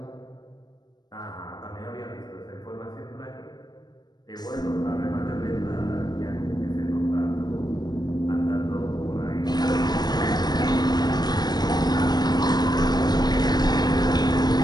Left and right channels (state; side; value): late; right; 0.20 ms